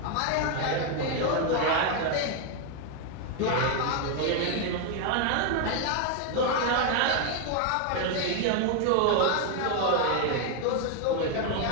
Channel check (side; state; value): both; different; correlation 0.01